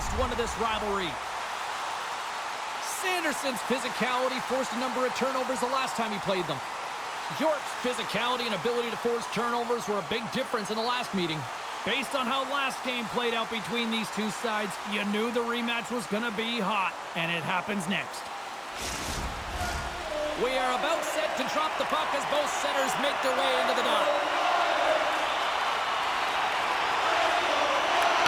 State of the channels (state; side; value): identical; both; correlation 1.00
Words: one of this rivalry. Sanderson's physicality forced a number of turnovers the last time he played them. York's physicality and ability to force turnovers were a big difference in the last meeting. Based on how last game played out between these two sides, you knew the rematch was going to be hot, and it happens next. We are about set to drop the puck as both centers make their way into the dot.